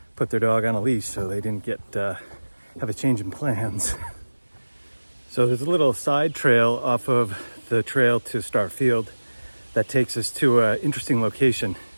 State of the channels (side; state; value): both; inverted; correlation -1.00